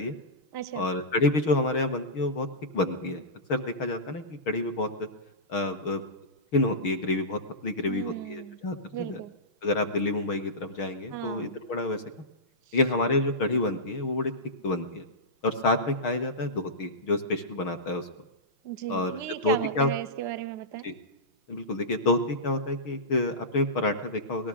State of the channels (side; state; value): right; late; 6.4 ms